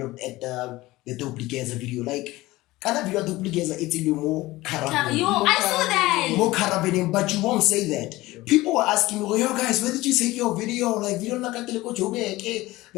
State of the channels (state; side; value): quieter; right; 18.7 dB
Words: at the Duplicata video. Like, kind of video Duplicata, it's a little more carabin. I saw that. More carabin, but you won't say that. People were asking me, yo guys, where did you take your video? Like, video